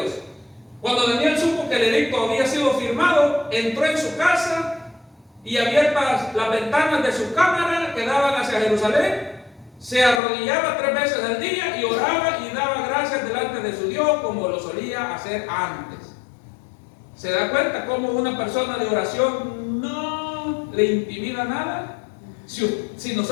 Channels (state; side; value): drops out; right; at 10.2 s